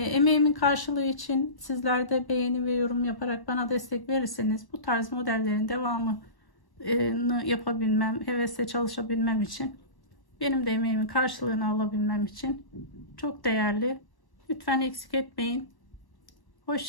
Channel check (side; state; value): right; late; 1.1 ms